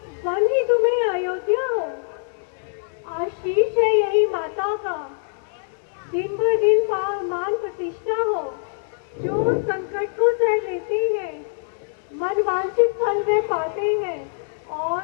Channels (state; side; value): silent; right; digital silence